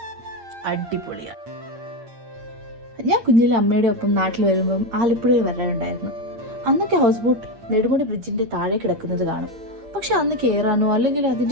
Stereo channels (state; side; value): late; left; 8.7 ms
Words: അടിപൊളിയാണ്. ഞാൻ കുഞ്ഞിലെ അമ്മയുടെ ഒപ്പം നാട്ടിൽ വരുമ്പം ആലപ്പുഴയിൽ വരാറുണ്ടായിരുന്നു. അന്നൊക്കെ ഹൗസ് ബോട്ട് നെടുമുടി ബ്രിഡ്ജിന്റെ താഴെ കിടക്കുന്നത് കാണും. പക്ഷെ അന്ന് കയറാനോ അല്ലെങ്കിൽ